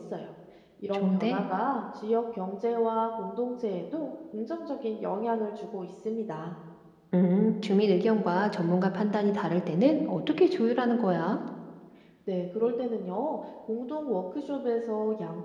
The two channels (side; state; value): both; identical; correlation 1.00